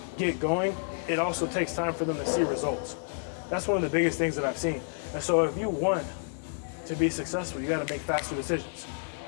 get going, it also takes time for them to see results. That's one of the biggest things that I've seen. And so if you want to be successful, you got to make faster decisions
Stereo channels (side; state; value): right; silent; digital silence